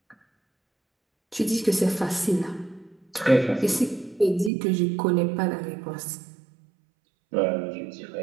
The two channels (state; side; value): drops out; left; at 4.5 s